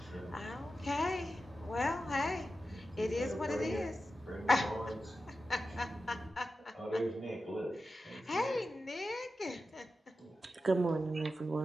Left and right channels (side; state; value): both; normal; correlation 0.92